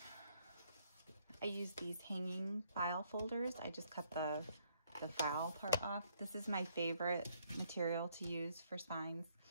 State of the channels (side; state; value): both; inverted; correlation -0.69